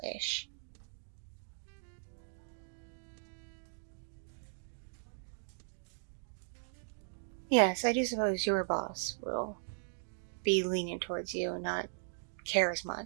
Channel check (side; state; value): left; silent; digital silence